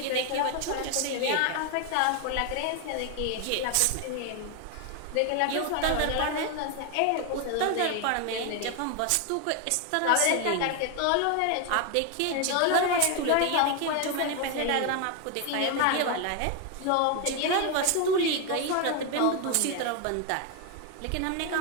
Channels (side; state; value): both; different; correlation 0.01